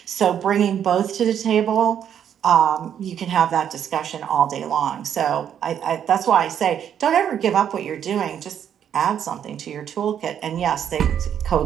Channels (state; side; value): quieter; left; 9.1 dB